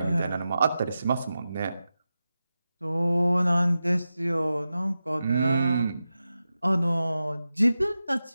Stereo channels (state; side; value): inverted; both; correlation -0.92